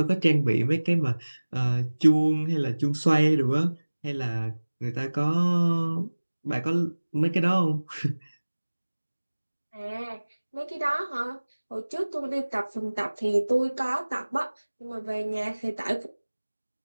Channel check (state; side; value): inverted; both; correlation -1.00